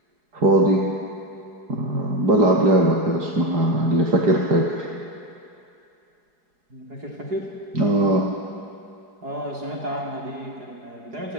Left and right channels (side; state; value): left; late; 4.7 ms